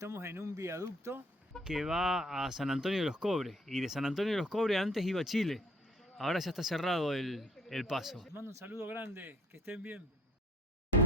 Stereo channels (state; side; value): normal; both; correlation 0.59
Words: en un viaducto que va a San Antonio de los Cobres. Y de San Antonio de los Cobres antes iba a Chile. Ahora ya está cerrado el paso. Les mando un saludo grande, que estén bien.